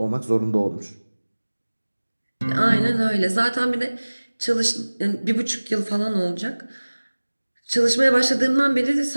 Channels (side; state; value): both; inverted; correlation -1.00